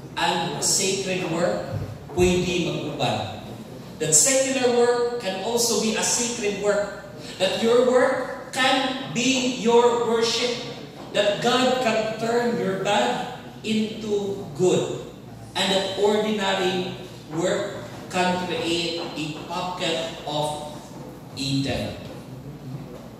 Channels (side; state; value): both; identical; correlation 1.00